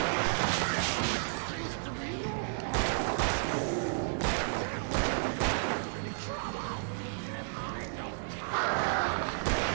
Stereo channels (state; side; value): silent; left; digital silence